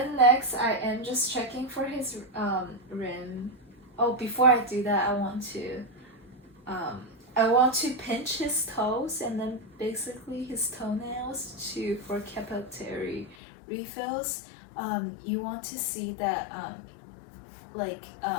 next, I am just checking for his rim. Oh, before I do that, I want to pinch his toes and then basically his toenails for capillary refills. You want to see that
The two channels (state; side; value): drops out; right; at 13.4 s